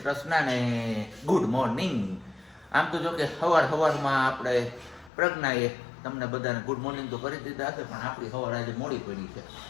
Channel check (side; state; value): right; drops out; at 5.1 s